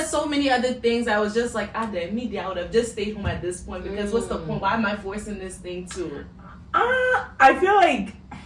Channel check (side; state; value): both; identical; correlation 1.00